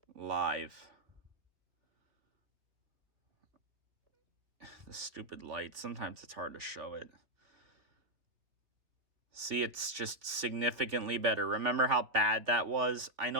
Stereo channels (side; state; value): left; late; 3.3 ms